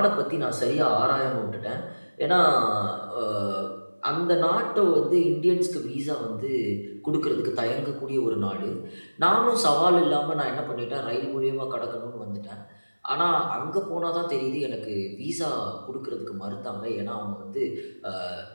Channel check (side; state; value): both; inverted; correlation -1.00